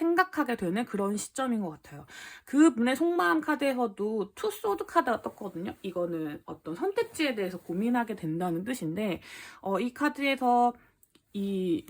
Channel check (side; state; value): both; identical; correlation 1.00